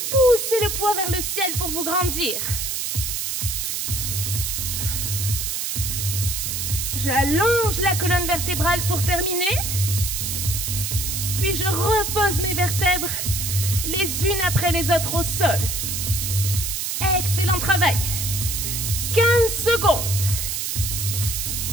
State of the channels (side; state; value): right; noise; hiss, 2 dB below the sound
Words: poussez le poids vers le ciel pour vous grandir. J'allonge la colonne vertébrale pour terminer. Puis je repose mes vertèbres les unes après les autres au sol. Excellent travail. 15 secondes.